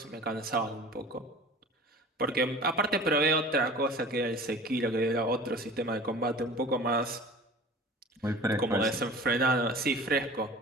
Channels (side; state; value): both; normal; correlation 0.41